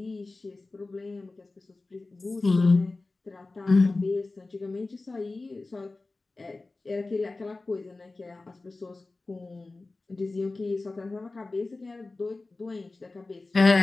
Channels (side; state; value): right; quieter; 3.3 dB